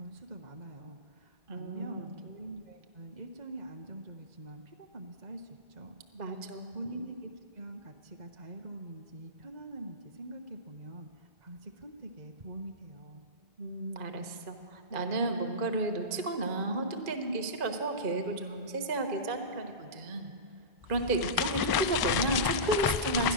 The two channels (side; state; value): left; late; 1.1 ms